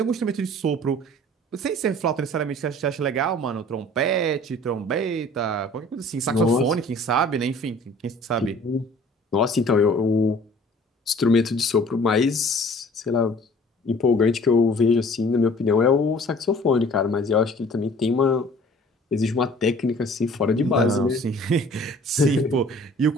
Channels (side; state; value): both; normal; correlation 0.51